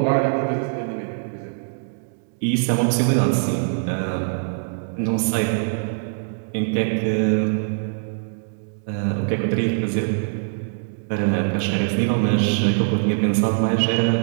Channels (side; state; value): left; silent; digital silence